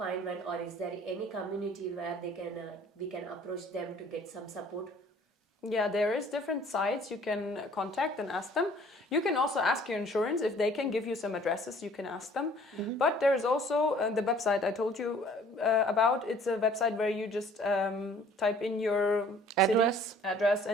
one, or is there any community where we can approach them to get some support? Yeah, there is different sites you can contact and ask them. You can also ask your insurance if they can give you some addresses. You can ask them. But there is also the website I told you about. It's a website where you just type in your address,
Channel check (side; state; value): both; normal; correlation 0.54